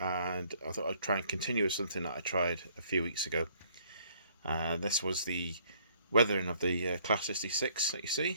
thought I'd try and continue with something that I tried a few weeks ago. This was the weathering of the Class 66 that you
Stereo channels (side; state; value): both; inverted; correlation -0.63